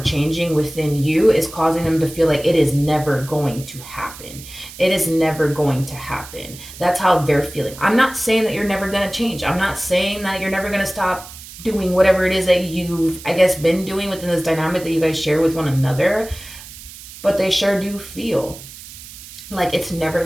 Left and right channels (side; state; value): right; noise; hiss, 16 dB below the sound